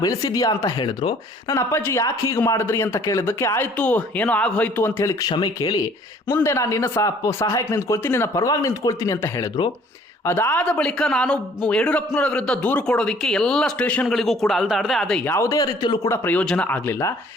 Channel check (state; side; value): normal; both; correlation 0.56